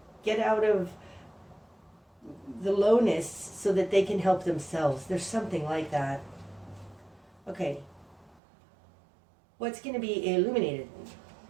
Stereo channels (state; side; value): drops out; left; at 8.4 s